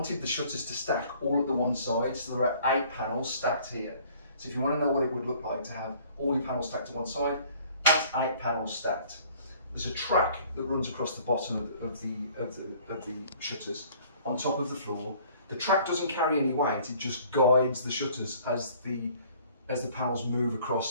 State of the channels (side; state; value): both; inverted; correlation -0.54